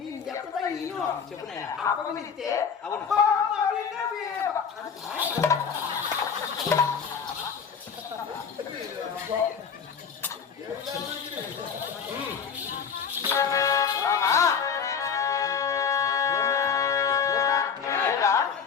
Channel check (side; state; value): right; quieter; 6.7 dB